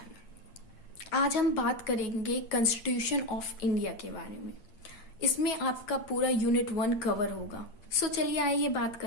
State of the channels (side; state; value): right; late; 8.8 ms